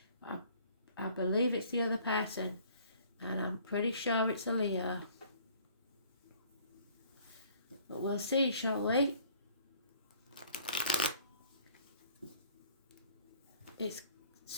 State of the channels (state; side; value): inverted; both; correlation -0.56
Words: I believe it's the other person, and I'm pretty sure it's a Leo. But we'll see, shall we? It's